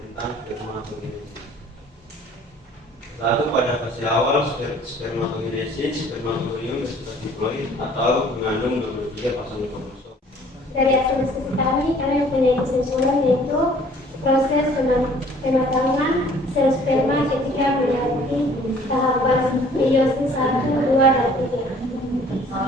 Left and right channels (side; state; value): both; normal; correlation 0.54